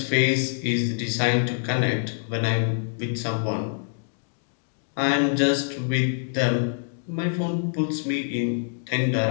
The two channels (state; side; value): silent; right; digital silence